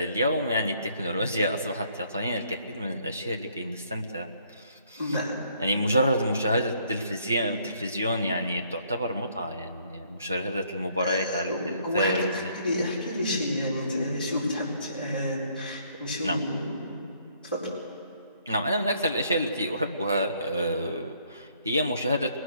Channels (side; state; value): both; inverted; correlation -0.66